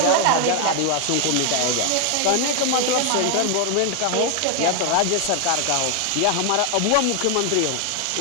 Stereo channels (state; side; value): different; both; correlation 0.00